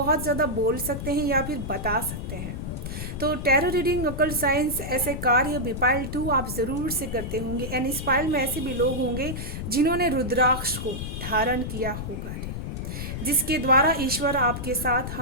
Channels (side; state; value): left; noise; rumble, 6 dB below the sound